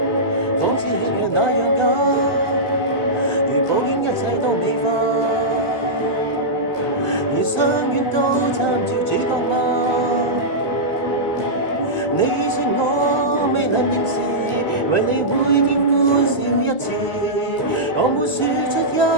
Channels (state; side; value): late; right; 2.1 ms